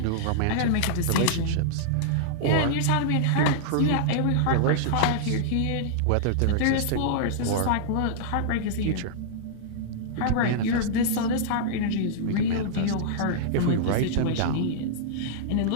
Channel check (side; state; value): both; different; correlation -0.02